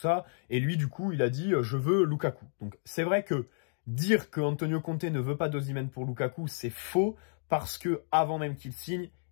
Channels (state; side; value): silent; right; digital silence